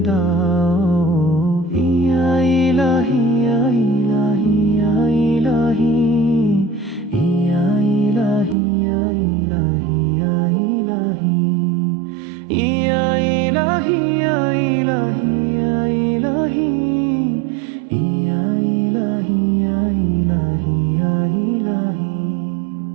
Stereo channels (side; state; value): left; drops out; at 8.6 s